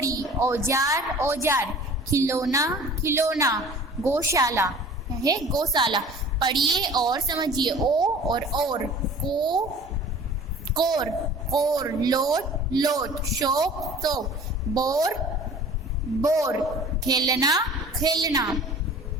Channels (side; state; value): both; normal; correlation 0.45